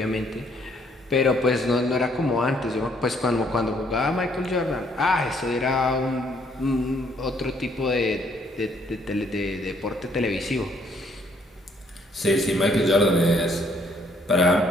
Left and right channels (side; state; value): both; normal; correlation 0.67